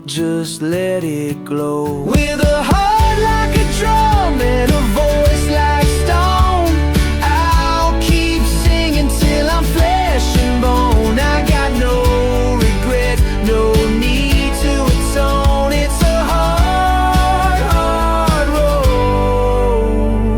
just let it glow. With a heart like a drum and a voice like stone, I'll keep singing till I'm flesh and bone. I got no regret, no need to atone. It's a hard, hard road,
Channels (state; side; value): identical; both; correlation 1.00